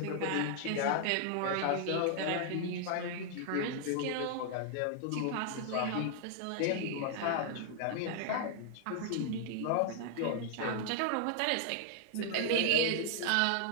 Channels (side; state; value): both; different; correlation -0.01